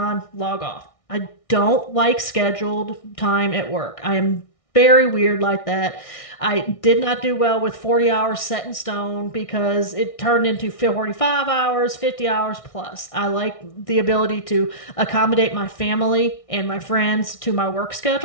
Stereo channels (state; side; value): late; right; 1.6 ms